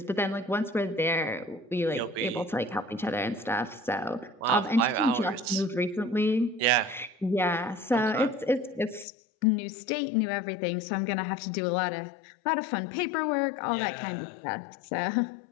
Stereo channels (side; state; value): right; drops out; at 9.1 s